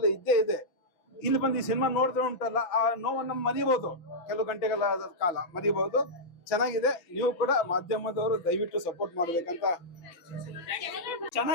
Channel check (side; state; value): right; late; 5.9 ms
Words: ಇದ್ದೇ ಇದೆ. ಇಲ್ಲಿ ಬಂದು ಈ ಸಿನಿಮಾ ನೋಡಿದ್ರೆ ಉಂಟಲ್ಲ, ಆ ನೋವನ್ನು ಮರಿಬಹುದು, ಕೆಲವು ಗಂಟೆಗಳ ಕಾಲ ಮರಿಬಹುದು. ಚೆನ್ನಾಗಿದೆ. ನೀವು ಕೂಡ ಮಾಧ್ಯಮದವರು ದಯವಿಟ್ಟು ಸಪೋರ್ಟ್ ಮಾಡ್ಬೇಕಂತ.